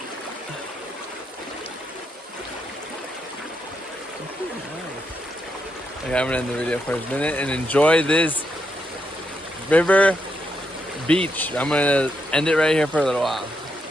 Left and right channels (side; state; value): both; normal; correlation 0.81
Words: Okay, I'm gonna end the video for a minute and enjoy this river beach. I'm gonna end it right here for a little while.